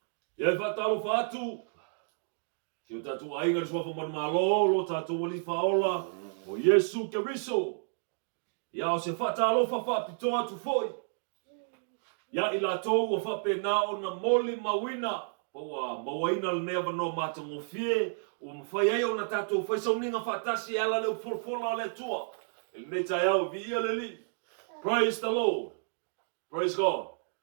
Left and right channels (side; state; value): left; silent; digital silence